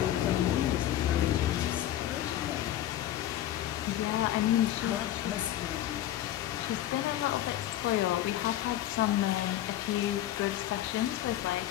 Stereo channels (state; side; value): quieter; right; 12.8 dB